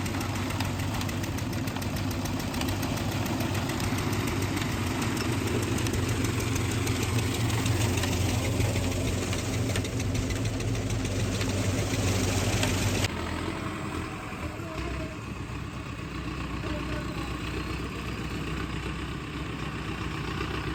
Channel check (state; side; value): identical; both; correlation 1.00